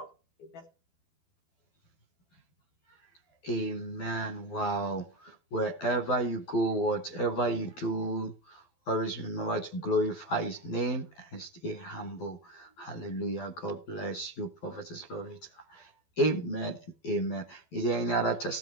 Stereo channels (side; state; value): right; late; 12 ms